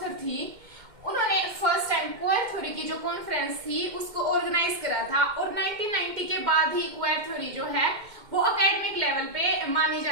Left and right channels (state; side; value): late; left; 2.1 ms